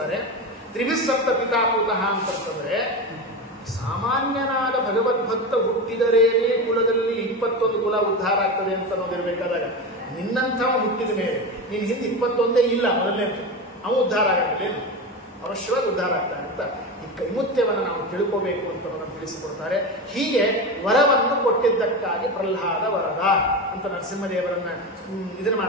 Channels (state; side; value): normal; both; correlation 0.21